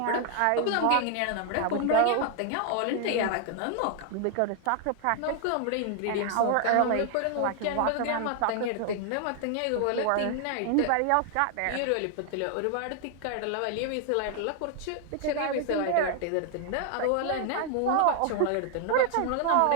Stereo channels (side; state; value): both; different; correlation 0.00